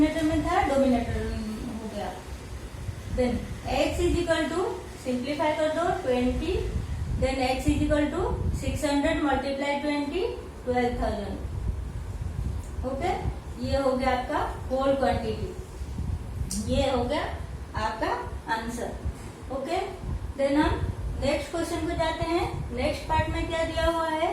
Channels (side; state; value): both; identical; correlation 1.00